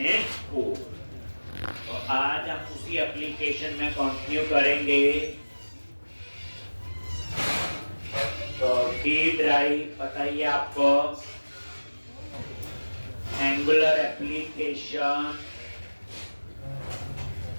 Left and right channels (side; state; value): both; inverted; correlation -1.00